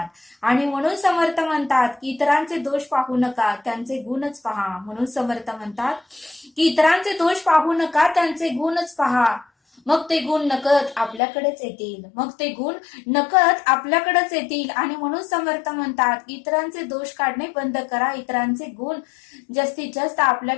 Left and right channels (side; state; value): right; drops out; at 11.2 s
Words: आणि म्हणून समर्थ म्हणतात की इतरांचे दोष पाहू नका, त्यांचे गुणच पहा. म्हणून समर्थ म्हणतात की इतरांचे दोष पाहू नका, त्यांचे गुणच पहा. मग ते गुण नकळत आपल्याकडेच येतील. आणि म्हणून समर्थ म्हणतात की इतरांचे दोष काढणे बंद करा, इतरांचे गुण जास्तीत जास्त